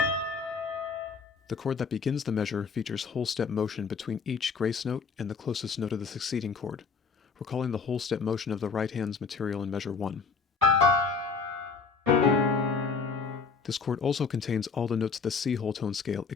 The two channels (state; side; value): quieter; right; 5.0 dB